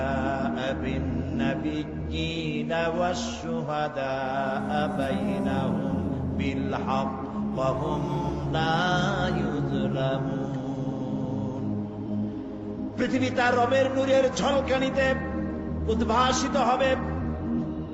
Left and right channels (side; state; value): both; identical; correlation 1.00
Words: বিন নাবিয়্যিনা ওয়াশ শুহাদাআ বাইনাহুম বিল হক ওয়া হুম লা ইউযলামুন। পৃথিবী তার রবের নূরের ঝলকানিতে উদ্ভাসিত হবে।